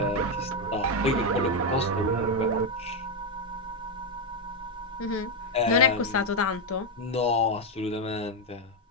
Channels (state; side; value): normal; both; correlation 0.03